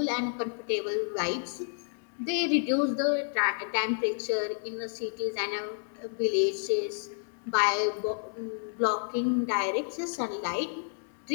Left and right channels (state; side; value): silent; right; 58 dB below the other